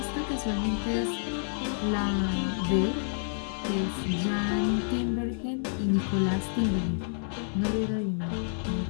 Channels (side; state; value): right; silent; digital silence